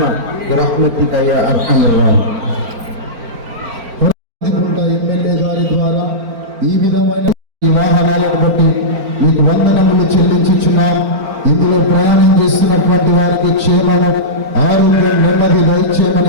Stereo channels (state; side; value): late; left; 4.4 ms